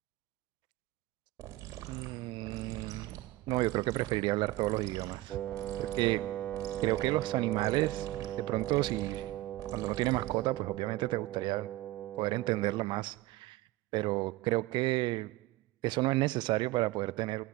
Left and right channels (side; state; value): left; quieter; 18.1 dB